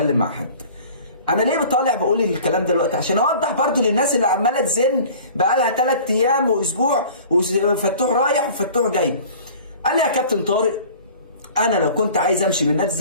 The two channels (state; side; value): inverted; both; correlation -0.45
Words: مع حد. انا ليه طالع بقول الكلام ده دلوقتي؟ عشان اوضح برضو للناس اللي عماله تزن بقالها 3 ايام واسبوع وفتوح رايح وفتوح جاي. قال لي يا كابتن طارق انا لو كنت عايز امشي من نادي